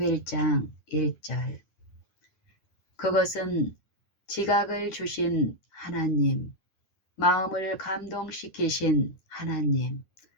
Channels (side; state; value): right; late; 10 ms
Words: 1절. 그것은 지각을 주신 하나님, 마음을 감동시키신 하나님,